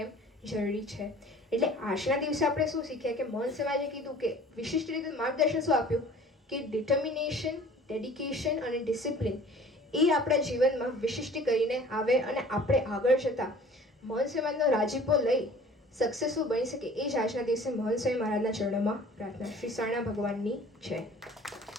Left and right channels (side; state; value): both; normal; correlation 0.48